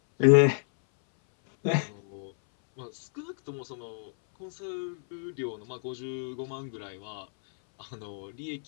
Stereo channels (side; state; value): right; silent; 58 dB below the other